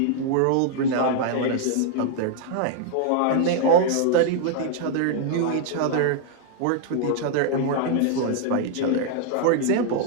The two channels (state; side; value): different; both; correlation 0.00